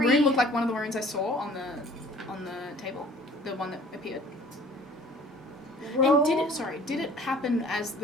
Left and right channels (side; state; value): both; normal; correlation 0.51